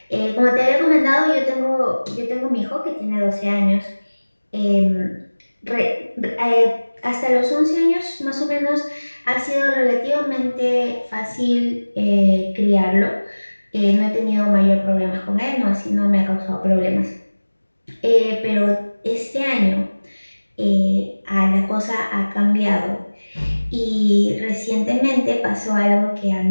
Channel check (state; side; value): inverted; both; correlation -1.00